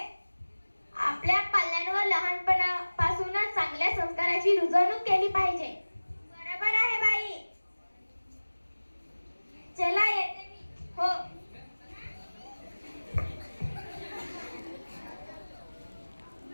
आपल्या पाल्यांवर लहानपणापासूनच चांगल्या संस्काराची रुजवणूक केली पाहिजे. बरोबर आहे बाई. चला येते मी. हो.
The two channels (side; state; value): both; inverted; correlation -1.00